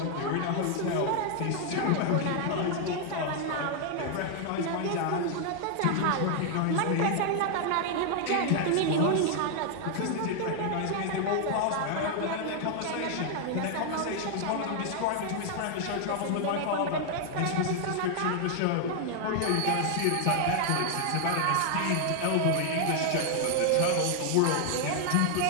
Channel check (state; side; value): different; both; correlation 0.00